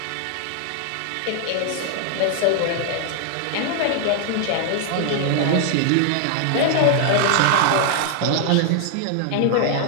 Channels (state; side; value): different; both; correlation 0.00